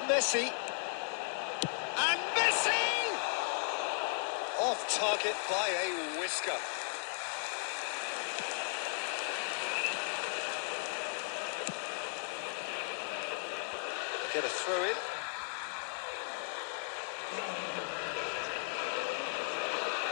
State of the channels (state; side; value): silent; right; 54 dB below the other